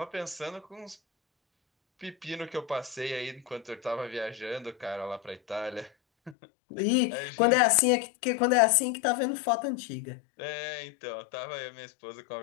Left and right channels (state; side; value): drops out; right; at 6.4 s